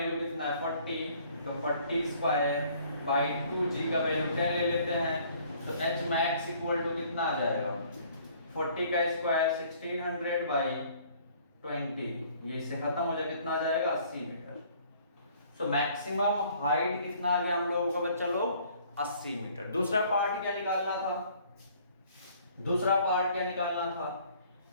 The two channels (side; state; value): both; inverted; correlation -0.58